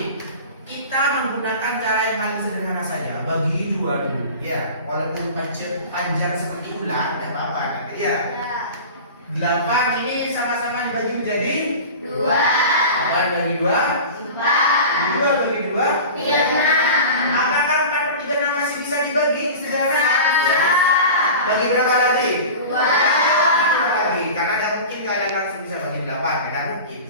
kita menggunakan cara yang paling sederhana saja, bagi 2 dulu. Ya, walaupun panjang seperti ulang, tidak apa-apa. Tapi ya, 8 ini sama-sama dibagi menjadi 2. 8 bagi 2, 2 bagi 2, 6. Apakah 4/36 masih bisa dibagi? Sederhana. Bagi berapa lagi? 2 lagi. Karena tidak mungkin kalian langsung bisa bagi 8. Tidak mungkin.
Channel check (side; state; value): both; inverted; correlation -0.34